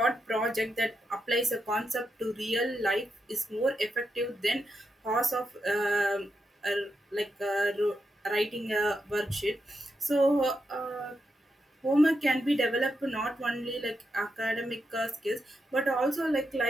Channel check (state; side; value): normal; both; correlation 0.85